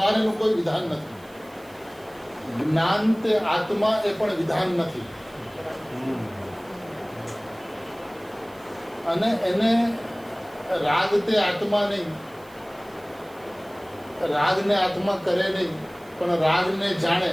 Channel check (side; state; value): right; noise; hiss, 27 dB below the sound